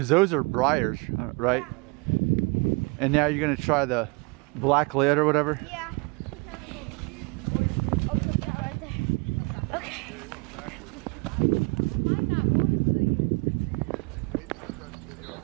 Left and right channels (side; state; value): left; quieter; 29.3 dB